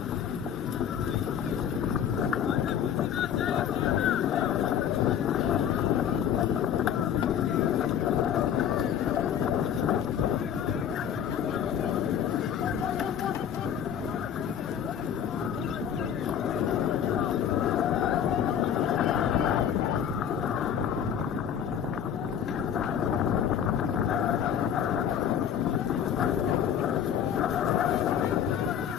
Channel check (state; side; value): quieter; right; 9.0 dB